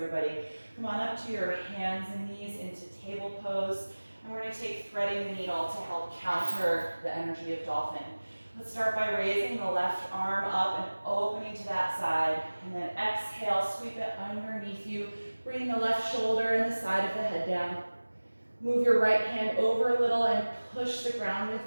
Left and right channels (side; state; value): both; inverted; correlation -1.00